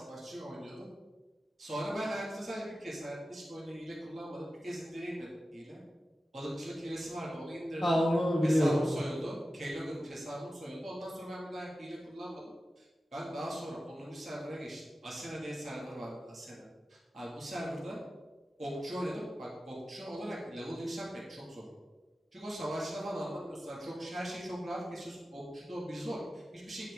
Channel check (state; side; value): normal; both; correlation 0.94